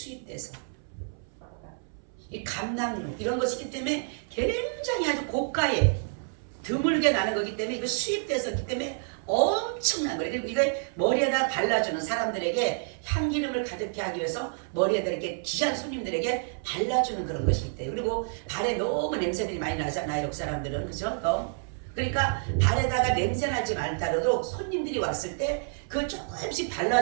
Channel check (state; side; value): silent; left; 59 dB below the other